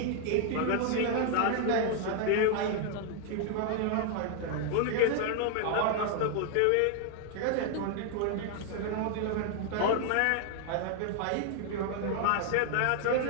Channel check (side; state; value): both; different; correlation 0.00